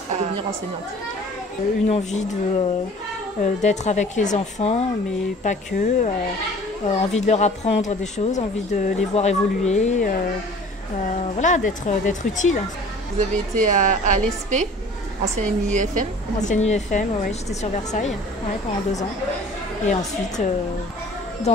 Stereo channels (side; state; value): both; normal; correlation 0.47